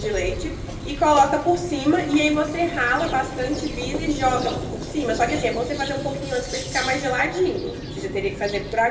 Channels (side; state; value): both; identical; correlation 1.00